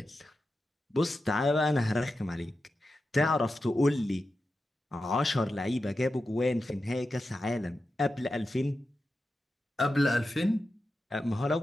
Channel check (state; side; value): normal; both; correlation 0.91